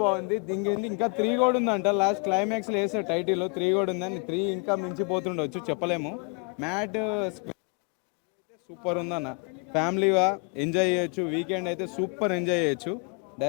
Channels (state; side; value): quieter; right; 35.6 dB